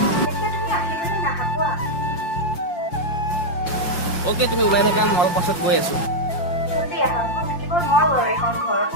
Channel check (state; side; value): late; right; 5.8 ms